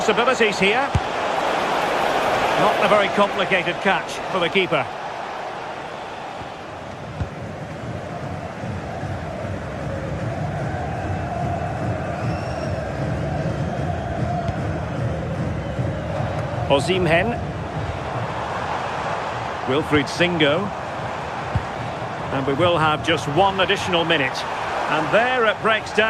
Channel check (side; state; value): both; identical; correlation 1.00